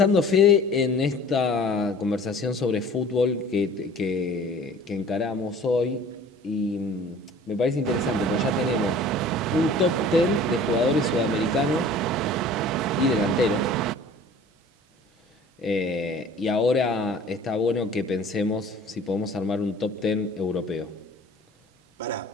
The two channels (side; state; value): both; normal; correlation 0.47